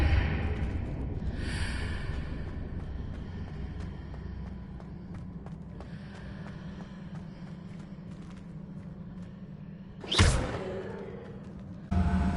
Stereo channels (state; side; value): identical; both; correlation 1.00